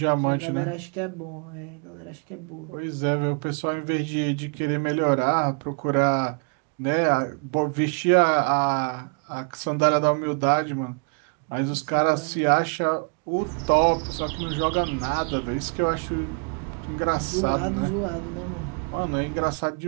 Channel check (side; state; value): left; quieter; 37.2 dB